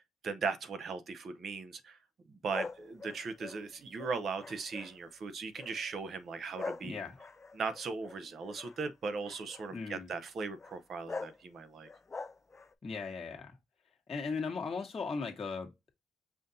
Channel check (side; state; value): both; normal; correlation 0.75